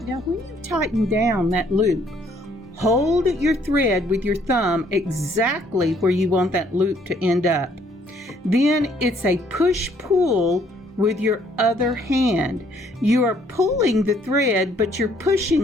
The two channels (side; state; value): both; normal; correlation 0.65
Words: Now when you tighten down that loop, hold your thread with your thumb exactly where you want that loop to end up. Then it's a push-pull with your other hand. You are pulling the thread, but you're